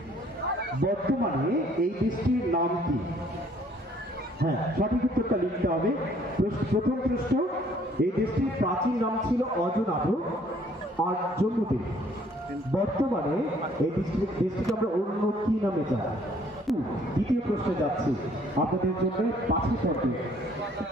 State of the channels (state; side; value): normal; both; correlation 0.61